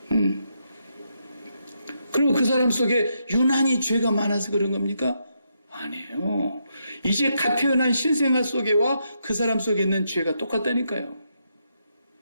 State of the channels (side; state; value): both; inverted; correlation -0.80